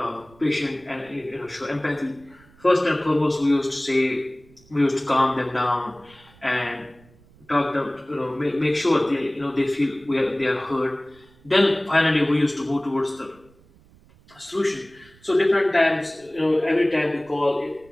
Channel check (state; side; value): noise; right; rumble, 28 dB below the sound